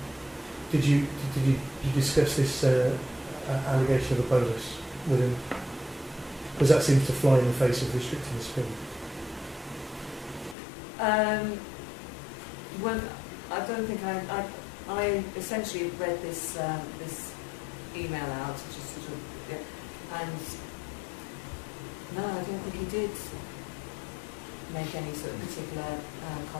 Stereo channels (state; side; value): drops out; right; at 10.6 s